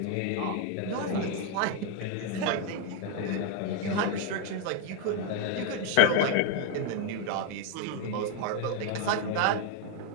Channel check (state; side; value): different; both; correlation 0.01